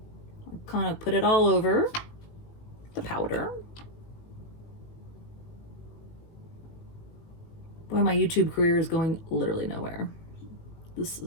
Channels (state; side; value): late; right; 18 ms